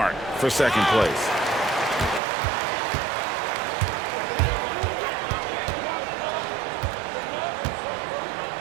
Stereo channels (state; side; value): drops out; left; at 2.2 s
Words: for second place.